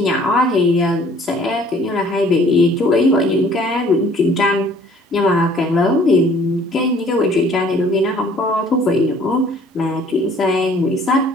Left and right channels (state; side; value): normal; both; correlation 0.56